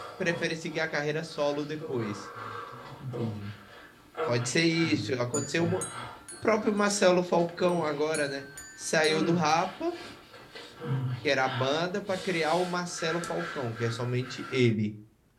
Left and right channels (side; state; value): both; identical; correlation 1.00